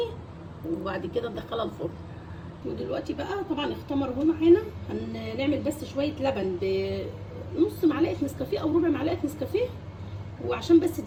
وبعد كده ندخلها الفرن. ودلوقتي بقى طبعا اختمر اهو معانا. هنعمل بس شويه لبن بنص معلقه نسكافيه او ربع معلقه نسكافيه، وعشان بس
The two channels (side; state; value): both; identical; correlation 1.00